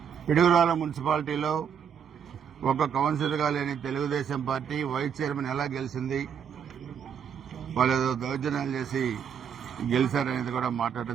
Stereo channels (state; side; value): quieter; left; 7.7 dB